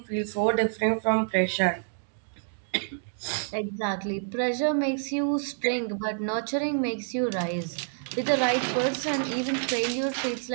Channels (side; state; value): left; silent; digital silence